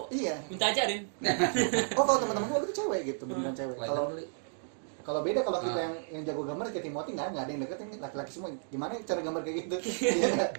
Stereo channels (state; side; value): silent; left; digital silence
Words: Iya. Minta ajarin. Oh, kalau teman-teman gue itu cewek gitu, beneran cewek. Lain Kalau beli. kalau beda kalau kita Ah. yang jago gambar kayak Timothy nggak ada yang deketin laki-laki semua. Gimana cara gambar kayak gitu? Iya nggak?